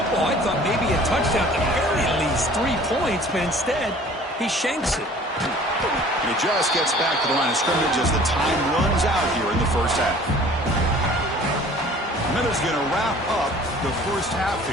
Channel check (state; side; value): normal; both; correlation 0.49